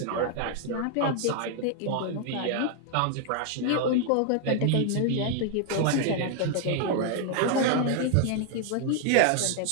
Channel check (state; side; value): different; both; correlation 0.00